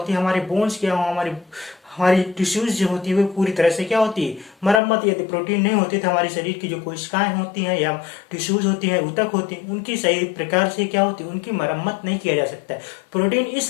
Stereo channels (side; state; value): right; drops out; at 4.8 s